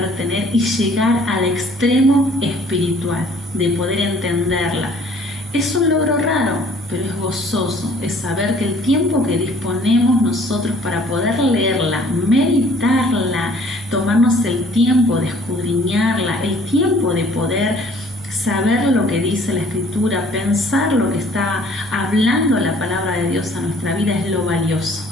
tener y llegar al extremo espiritual, de poder entenderla. Es un logro raro, pero es gozoso, es saber que el tiempo que disponemos nosotros para poder leerla, meditarla, tomarnos el tiempo de escudriñarla, el tiempo de poder saber lo que dice la Escritura, pensar lo que está hablando la palabra de Dios a nuestra vida, es lo valioso.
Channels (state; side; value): normal; both; correlation 0.56